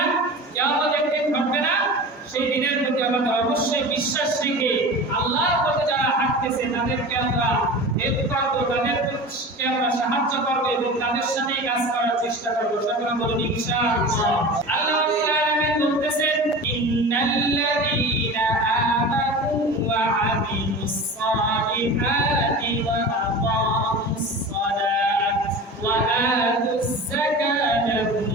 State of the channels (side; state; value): both; normal; correlation 0.33